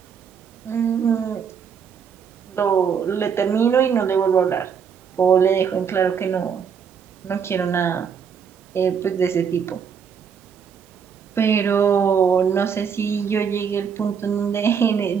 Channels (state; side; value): quieter; left; 7.0 dB